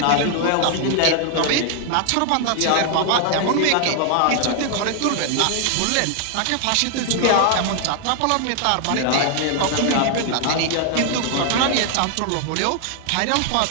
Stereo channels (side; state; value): both; different; correlation 0.00